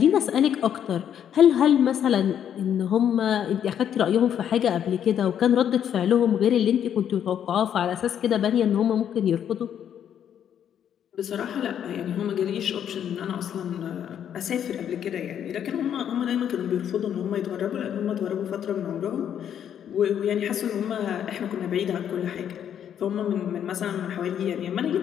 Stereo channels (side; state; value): right; quieter; 9.3 dB